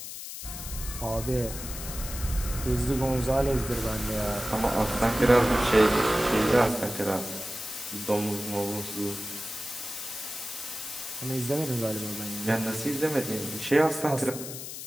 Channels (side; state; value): left; noise; hiss, 9 dB below the sound